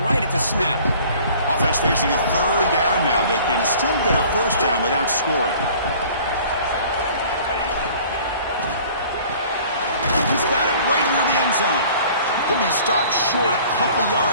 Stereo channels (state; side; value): inverted; both; correlation -0.50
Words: right at the snap. Offense facing a third down now. They can still get a first down without scoring. He's got it right near the end zone. Could be stopped short a couple